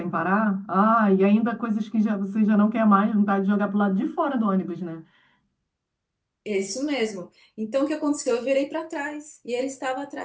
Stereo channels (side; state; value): both; identical; correlation 1.00